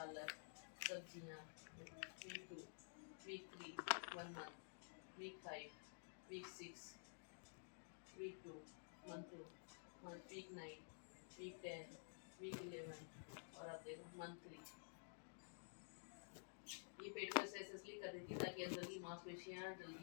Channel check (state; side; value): silent; right; digital silence